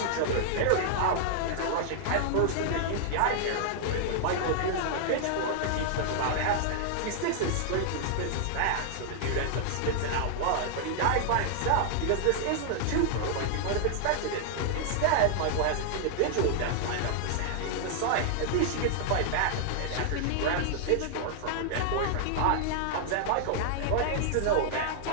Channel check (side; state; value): both; different; correlation -0.01